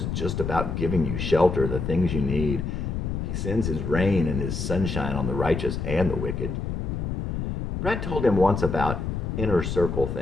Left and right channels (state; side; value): noise; left; rumble, 3 dB below the sound